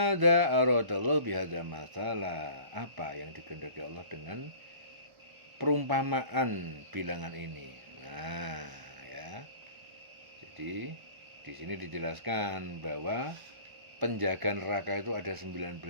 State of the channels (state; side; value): late; left; 1.4 ms